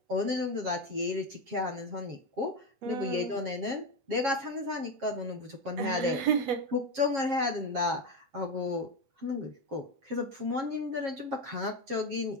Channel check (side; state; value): left; late; 7.4 ms